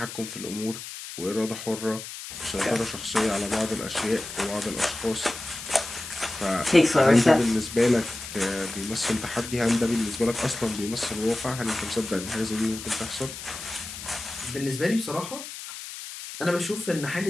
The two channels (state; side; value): noise; left; hiss, 10 dB below the sound